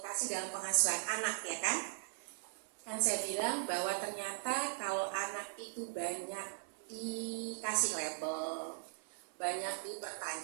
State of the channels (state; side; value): silent; left; 52 dB below the other